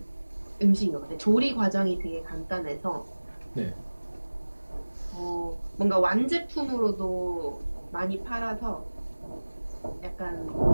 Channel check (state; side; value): inverted; both; correlation -1.00